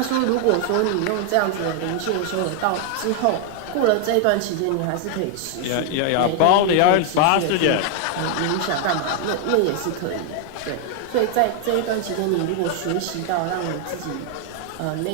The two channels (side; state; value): both; different; correlation 0.00